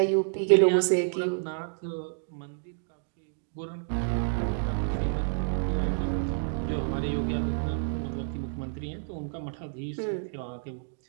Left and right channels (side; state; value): left; silent; digital silence